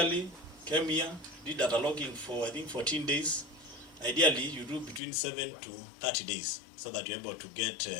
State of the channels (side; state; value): right; drops out; at 5.0 s